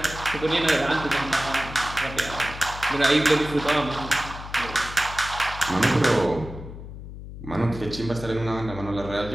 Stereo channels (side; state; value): left; noise; hum, 12 dB below the sound